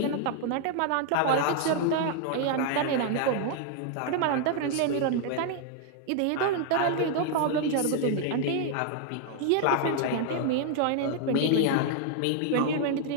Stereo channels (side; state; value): both; different; correlation 0.00